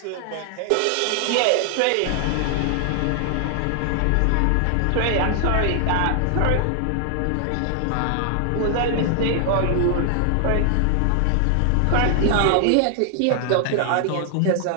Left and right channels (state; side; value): different; both; correlation 0.00